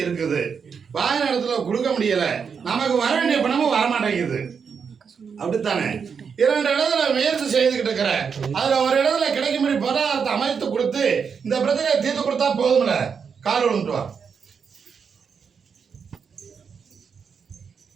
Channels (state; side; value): quieter; left; 6.3 dB